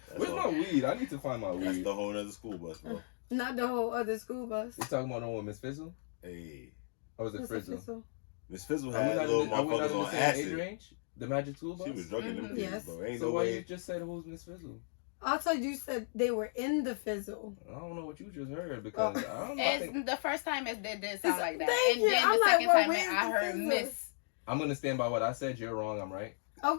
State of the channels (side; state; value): right; silent; digital silence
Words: Where's my weed? I need to find my weed. That's the whole other school bus, bro. Not the whole other school bus. You talking about the one with Miss Fizzle? Hey. Or was it Fizzle? Miss Fizzle had little motherfuckers on acid. Range? The magic school bus? She was drugging them kids, yes. bro. Ain't so no why way. you just said who's Miss Fizzle? I thought you said they were in the Fizzle. I don't know what you just heard because I don't know. It's the first time it did sound like that. Thank and you. then I'm the second like, time I heard Miss. I'm gonna stand by what I said. You're wrong. I'm right.